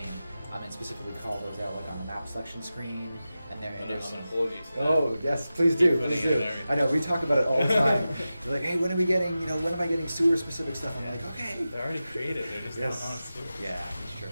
and specifically call those out like on the map selection screen. And there's I'm gonna hold you to that. Oh yes, please do. Please do. I know we talk about it all the time. They're like, hey, when are we getting? When am I getting sewer-specific stuff? I'm like, okay. They're already created. They're just not honest to it. Yeah,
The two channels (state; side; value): inverted; both; correlation -0.94